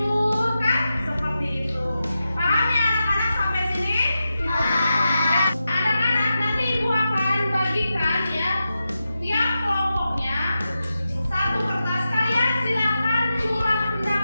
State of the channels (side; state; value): both; inverted; correlation -0.90